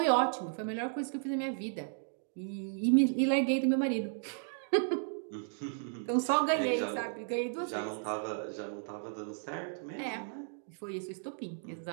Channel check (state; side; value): silent; left; digital silence